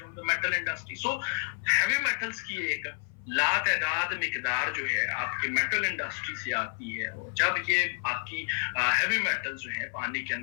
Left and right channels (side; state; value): right; silent; 56 dB below the other